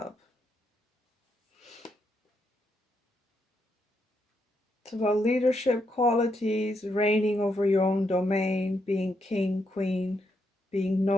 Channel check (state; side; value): normal; both; correlation 0.79